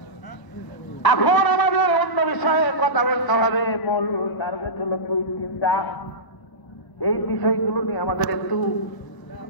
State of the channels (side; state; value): right; late; 1.0 ms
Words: এখন আমাদের অন্য বিষয়ে কথা বলতে হবে। মূল টার্গেট হলো 2-3টা। এই বিষয়গুলো নিয়ে আমাদের একটু